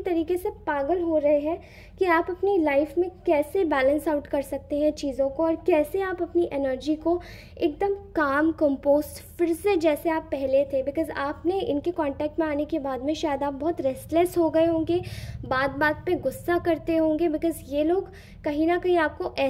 तरीके से पागल हो रहे हैं कि आप अपनी लाइफ में कैसे बैलेंस आउट कर सकते हैं चीज़ों को, और कैसे आप अपनी एनर्जी को एकदम काम कंपोस्ट फिर से जैसे आप पहले थे, बिकॉज आपने इनके कांटेक्ट में आने के बाद में शायद आप बहुत रेस्टलेस हो गए होंगे, बात बात पे गुस्सा करते होंगे, बिकॉज ये लोग कहीं ना कहीं आपको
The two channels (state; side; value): identical; both; correlation 1.00